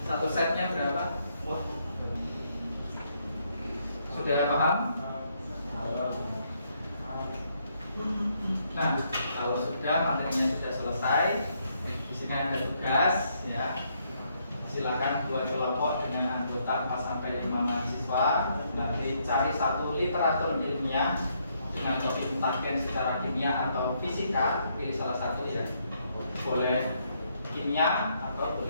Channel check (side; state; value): both; inverted; correlation -0.74